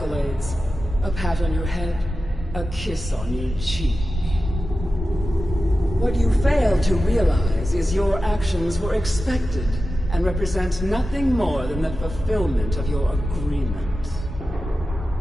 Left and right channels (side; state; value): both; normal; correlation 0.93